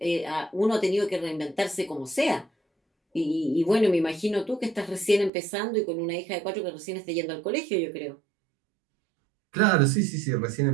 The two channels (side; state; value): left; drops out; at 5.3 s